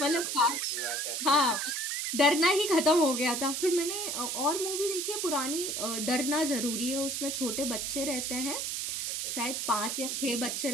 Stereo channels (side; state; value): right; noise; hiss, 2 dB below the sound